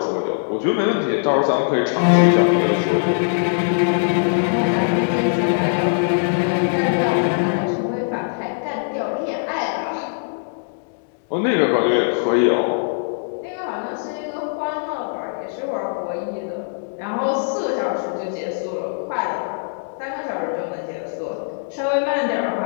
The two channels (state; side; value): silent; right; digital silence